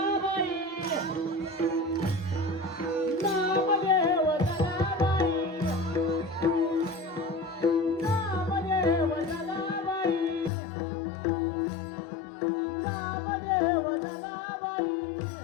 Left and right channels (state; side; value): drops out; right; at 10.5 s